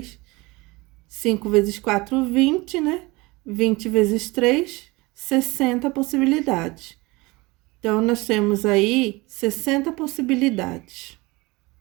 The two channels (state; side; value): quieter; left; 23.2 dB